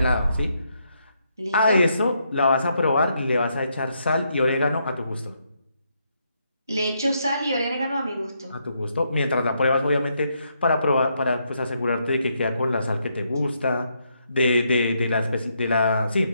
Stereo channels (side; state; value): both; inverted; correlation -0.77